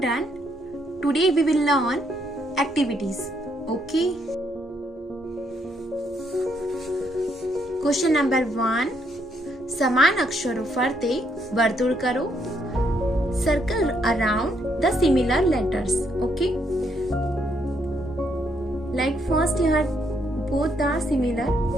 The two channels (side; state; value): both; normal; correlation 0.74